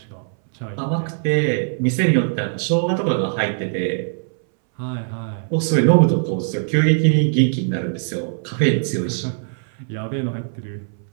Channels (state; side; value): silent; left; 65 dB below the other